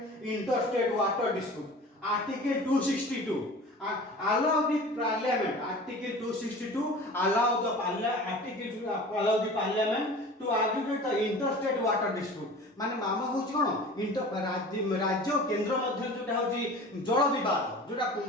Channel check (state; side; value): normal; both; correlation 0.40